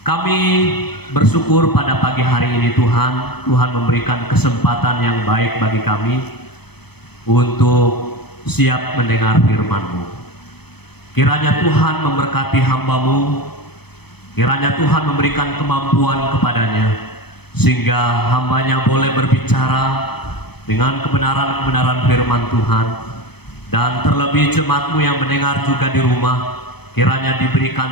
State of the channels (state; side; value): late; right; 0.97 ms